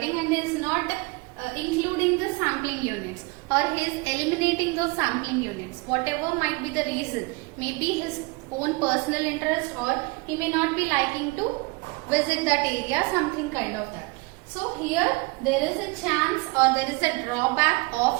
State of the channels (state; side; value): quieter; left; 26.9 dB